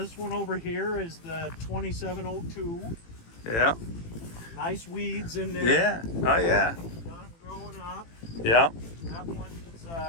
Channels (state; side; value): late; right; 18 ms